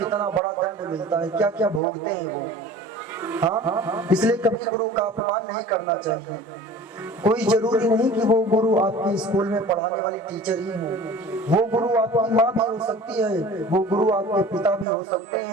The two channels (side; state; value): both; normal; correlation 0.42